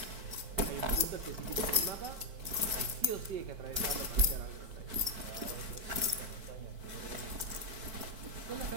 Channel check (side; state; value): left; late; 5.1 ms